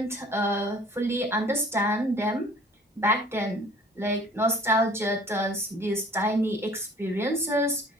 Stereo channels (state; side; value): normal; both; correlation 0.51